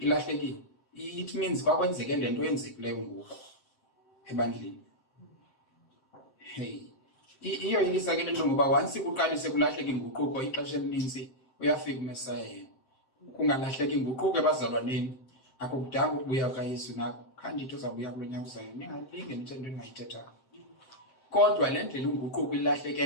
It means kwakwenzeke le nto yenzekileyo ngoku ebandleni. Hey. Iyo yilisa ke lento ngoba once kuqalise kulahleka inguquko ixesha elininzi uyafika uMesaya yena. Kungalahleka inguquko ebazalwaneni akukudanga ukubuya kaYesu nako khandithi uzabuya kulonyaka uzayo ningalinge nithe into engayithetha. Kodwa le ndlela inguquko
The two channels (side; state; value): right; late; 7.7 ms